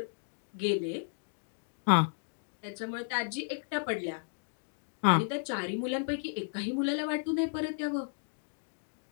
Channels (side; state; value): right; silent; digital silence